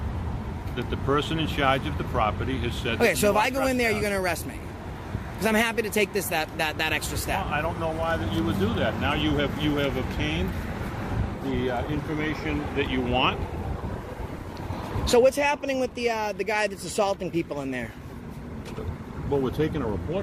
that the person in charge of the property has said... Okay, so if I go in there, you're going to arrest me? Because I'm happy to take that extra step. Well, I don't know why that you would do that. Now you have obtained the information that you want. So what's happening with the guy that's assaulting people in there? Well, we're taking a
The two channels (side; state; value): both; identical; correlation 1.00